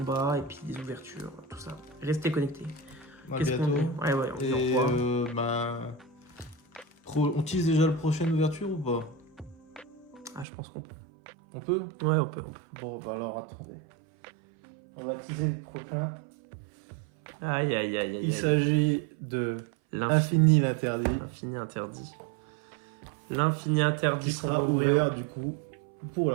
et puis des ouvertures, tout ça. Restez connectés. À Qu'est-ce qu'on bientôt. dit? Ouais, on dit au Et revoir. on tease déjà la prochaine ouverture ou pas? Ah, je pense qu'on peut. On peut? Ouais, on peut. Bon, bah alors attendez. On va teaser le prochain. Aïe, aïe, aïe, aïe. Il s'agit de L'infini Infini l'interdit, interdit. L'infini interdit. qui sera qu'on va ouvert du coup pour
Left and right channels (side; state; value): left; drops out; at 10.5 s